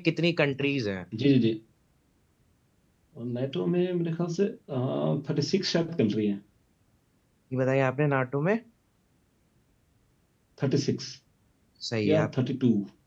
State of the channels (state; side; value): identical; both; correlation 1.00